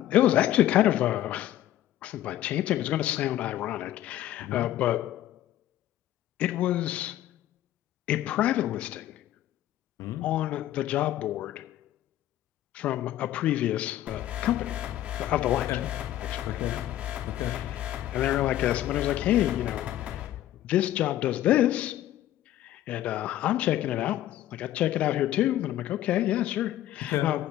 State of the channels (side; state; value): right; quieter; 13.3 dB